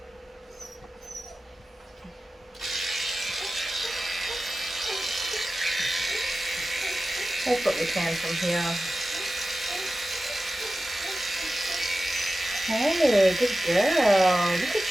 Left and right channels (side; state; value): both; normal; correlation 0.94